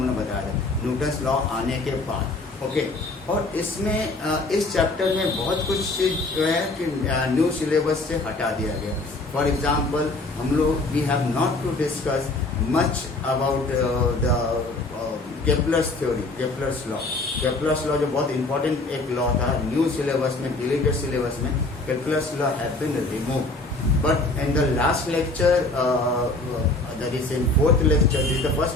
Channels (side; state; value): right; quieter; 3.1 dB